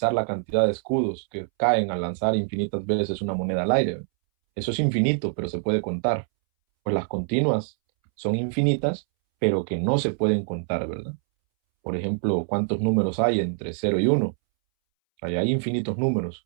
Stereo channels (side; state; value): left; silent; 62 dB below the other